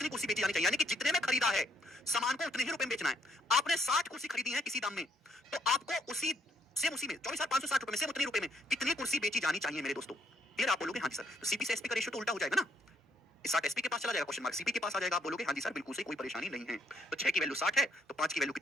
कुर्सी बेची जानी चाहिए? यानी कि जितने में खरीदा है सामान को उतने ही रुपए में बेचना है। आपने 60 कुर्सी खरीदी है किसी दाम में, तो आपको उसी सेम उसी में 24,560 रुपए में, सेम उतने रुपए में कितनी कुर्सी बेची जानी चाहिए मेरे दोस्तों? क्लियर? आप बोलोगे हाँ जी सर। तो सीपी से एसपी का रेशियो तो उल्टा हो जाएगा ना, 60 एसपी के पास चला जाएगा, क्वेश्चन मार्क सीपी के पास आ जाएगा। आप बोलोगे हाँ जी सर बिल्कुल सही, कोई परेशानी नहीं है। तो 6 की वैल्यू 60 है, तो 5 की वैल्यू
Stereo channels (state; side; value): normal; both; correlation 0.70